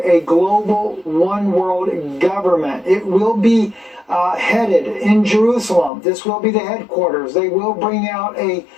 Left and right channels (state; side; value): drops out; right; at 5.9 s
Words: a global one world government. It will be headed in Jerusalem. This will be the headquarters. They will bring out a